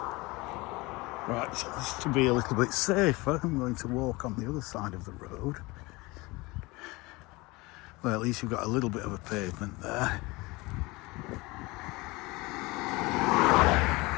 Right, so just to be a little bit safer, I'm going to walk on the other side of the road. Well, at least you've got a little bit of a pavement there.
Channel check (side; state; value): right; quieter; 23.1 dB